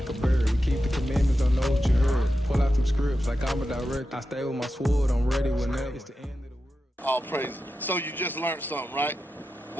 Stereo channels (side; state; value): both; normal; correlation 0.90